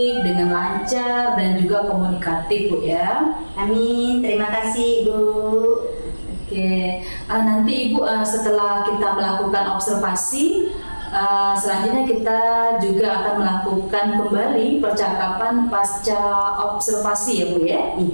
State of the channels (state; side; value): inverted; both; correlation -1.00